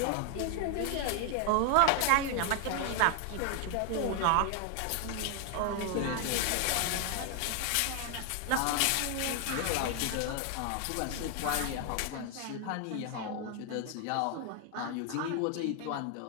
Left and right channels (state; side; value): different; both; correlation 0.00